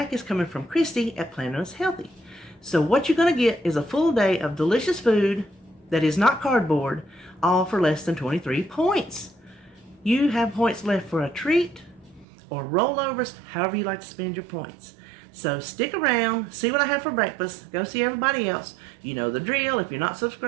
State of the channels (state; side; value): drops out; left; at 12.2 s